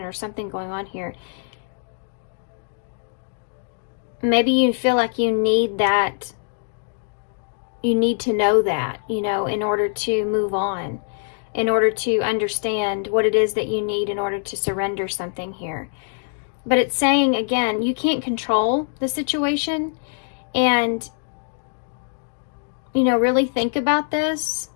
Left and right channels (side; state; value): right; silent; digital silence